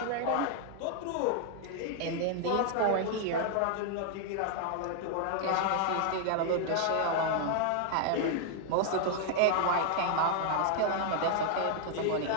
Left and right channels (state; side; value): different; both; correlation 0.00